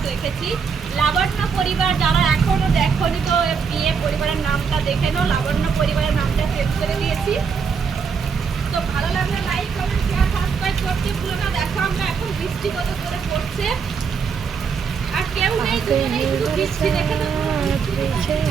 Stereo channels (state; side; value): quieter; left; 5.9 dB